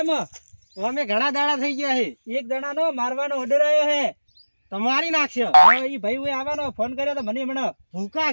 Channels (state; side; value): inverted; both; correlation -1.00